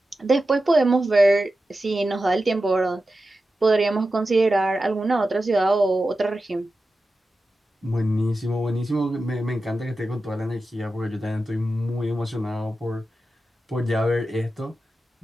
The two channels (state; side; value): normal; both; correlation 0.92